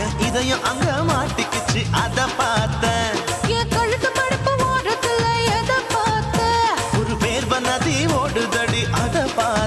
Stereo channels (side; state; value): both; identical; correlation 1.00